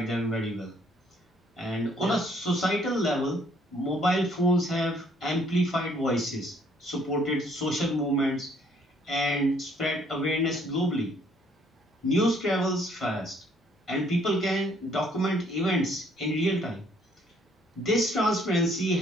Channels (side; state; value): both; normal; correlation 0.64